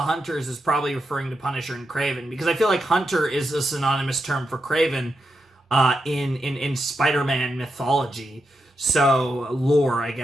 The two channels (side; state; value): both; normal; correlation 0.86